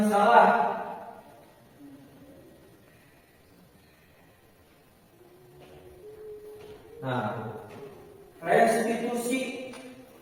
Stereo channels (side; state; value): both; identical; correlation 1.00